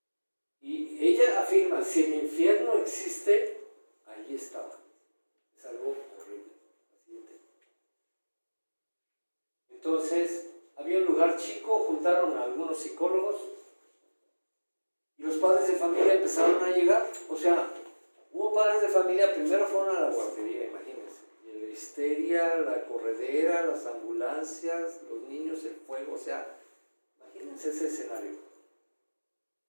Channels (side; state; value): both; inverted; correlation -1.00